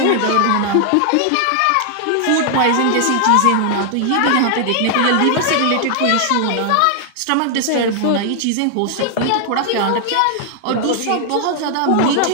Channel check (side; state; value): both; different; correlation 0.00